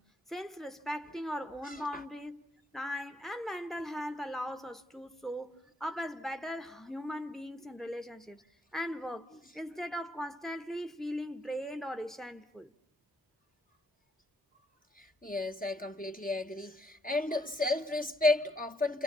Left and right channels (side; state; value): both; normal; correlation 0.73